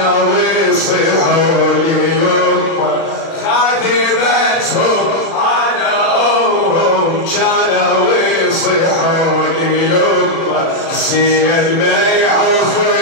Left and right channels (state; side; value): late; right; 36 ms